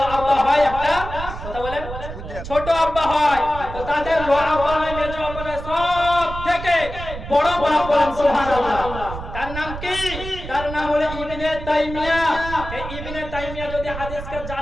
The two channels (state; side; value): noise; right; rumble, 9 dB below the sound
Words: আব্বা হয়, একটা কথা বলেন ছোট আব্বা হয়। তো তাদের লোয়া আব্বা নয়, মেজো আব্বা নয়, সব থেকে বড় বাপ বলেন সুবহানাল্লাহ। তার নাম কি? তার নাম হলো ইবনে তাইমিয়া। এই ইবনে তাইমিয়া যদি হাদিসকে